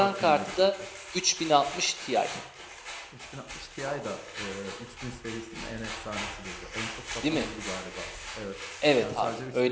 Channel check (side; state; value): both; identical; correlation 1.00